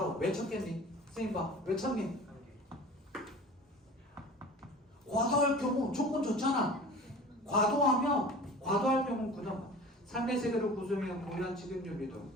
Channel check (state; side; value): normal; both; correlation 0.40